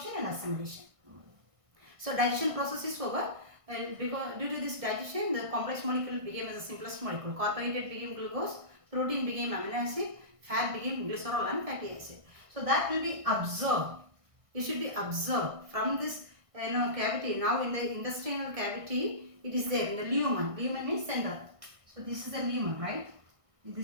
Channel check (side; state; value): left; late; 1.6 ms